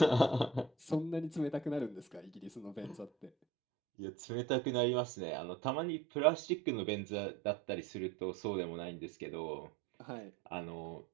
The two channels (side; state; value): left; drops out; at 3.3 s